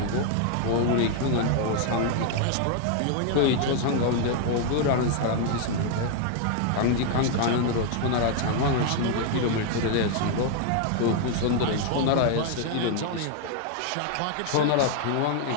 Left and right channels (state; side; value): different; both; correlation 0.00